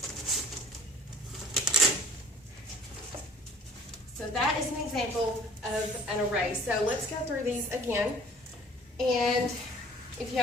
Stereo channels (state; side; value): normal; both; correlation 0.52